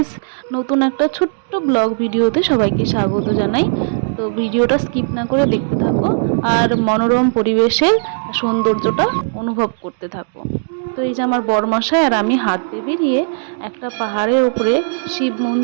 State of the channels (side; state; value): left; silent; digital silence